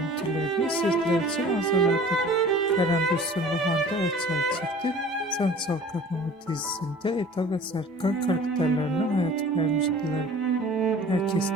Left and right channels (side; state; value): both; normal; correlation 0.46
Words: sizler için hazırladık. Kerem Bürsin ve Hande Erçel çifti Sen Çal Kapımı dizisinde Eda ve Serkan karakterlerine hayat vermiştiler. Herkes